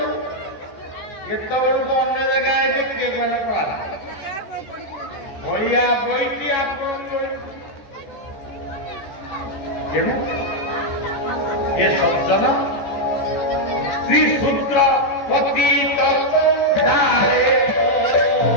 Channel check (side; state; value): right; late; 14 ms